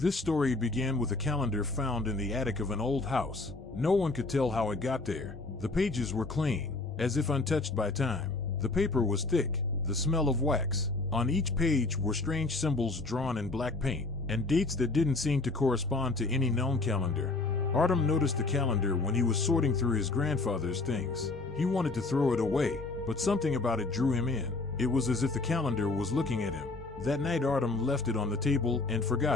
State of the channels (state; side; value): quieter; right; 3.4 dB